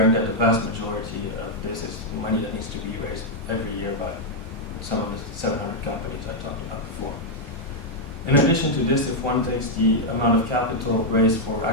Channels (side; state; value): both; normal; correlation -0.03